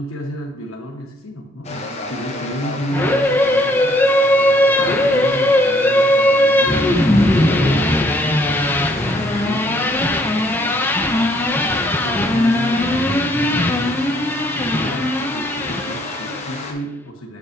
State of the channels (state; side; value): normal; both; correlation 0.65